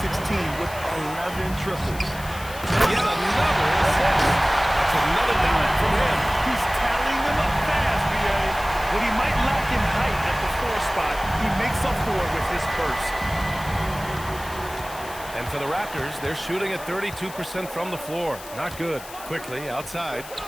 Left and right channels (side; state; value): left; noise; hiss, 16 dB below the sound